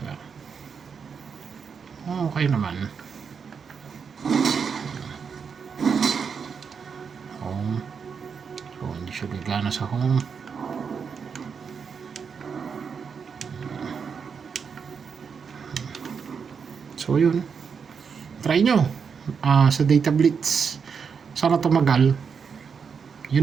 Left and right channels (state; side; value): quieter; left; 6.2 dB